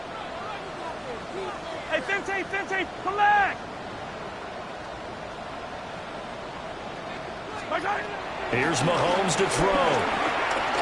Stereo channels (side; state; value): both; identical; correlation 1.00